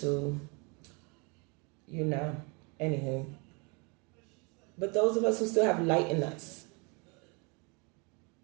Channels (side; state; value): left; quieter; 31.6 dB